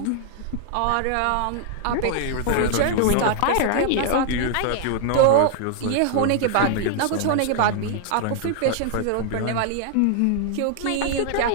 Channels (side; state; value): both; different; correlation -0.01